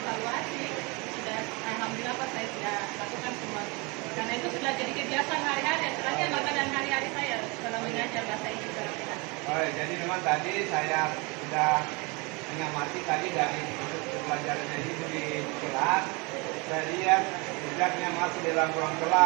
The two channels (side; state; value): left; quieter; 28.2 dB